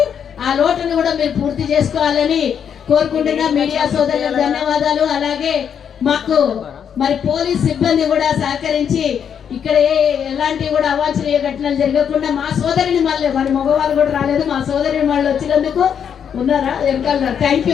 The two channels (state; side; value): quieter; right; 8.0 dB